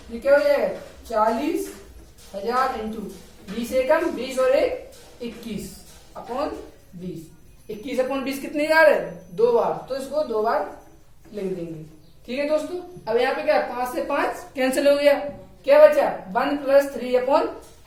ये क्या हो जाएगा, 40,000 इंटू 20 एकम 20 और 1 21 अपॉन 20। 21/20 कितनी बार है, 2 बार, तो इसको 2 बार लिख देंगे। ठीक है दोस्तों, अब यहाँ पे क्या 5 से 5 कैंसिल हो गया, क्या बचा 1 +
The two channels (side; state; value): both; identical; correlation 1.00